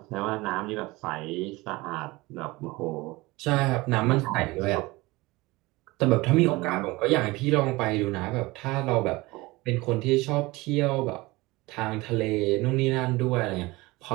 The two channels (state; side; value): quieter; left; 21.6 dB